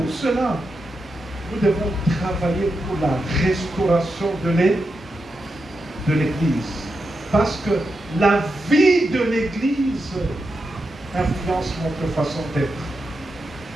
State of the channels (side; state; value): both; normal; correlation 0.87